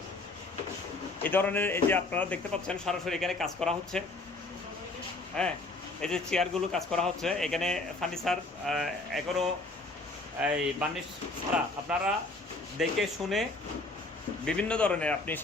এই ধরনের এই যে আপনারা দেখতে পাচ্ছেন সরাসরি এখানে কাজ করা হচ্ছে। হ্যাঁ, এই যে চেয়ারগুলো কাজ করা হচ্ছে, এখানে ফার্নিচার এখনও এই বার্নিশ ছাড়া। আপনারা দেখে শুনে বিভিন্ন ধরনের আপনি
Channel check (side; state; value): right; quieter; 3.1 dB